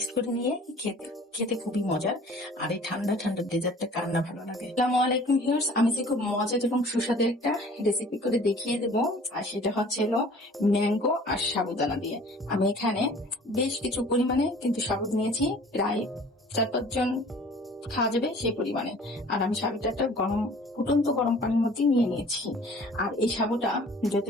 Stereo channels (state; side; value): normal; both; correlation 0.49